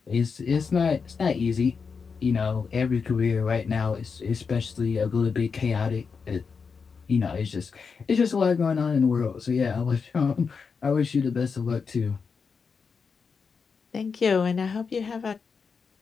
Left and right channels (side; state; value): right; quieter; 5.5 dB